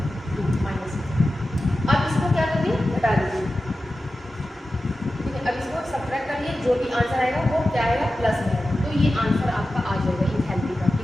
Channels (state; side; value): normal; both; correlation 0.93